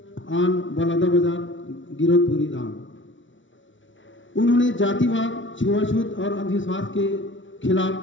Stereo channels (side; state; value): right; late; 0.56 ms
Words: on Baloda बाजार, गिरोधपुरी धाम। उन्होंने जातिवाद, छुआछूत और अंधविश्वास के